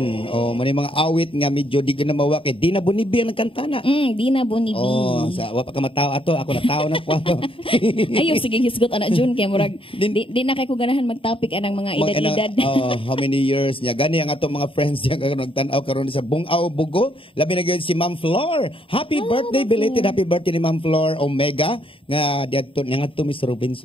May mga awit nga medyo di ka na mawak. Di na bunibi ang kantana. Di na bunibi. Sa wapa ka matawa ato, ako natawa na po ato. Ayo sige hisgot anak June kay murag di na kay ko ganahan mag-topic anang mga edad-edad. How many years niya? Gani ang atong mga friends niya karon nagtan-aw karon sa Bungaw Bugo. Labi na gyud si Ma'am Flor. Happy birthday, belated happy birthday ni Ma'am Flor Omega nga diadto nga to Miss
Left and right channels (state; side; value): late; right; 0.26 ms